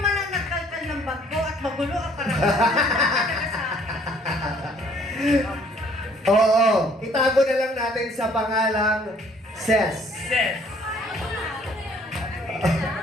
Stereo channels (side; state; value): both; normal; correlation 0.59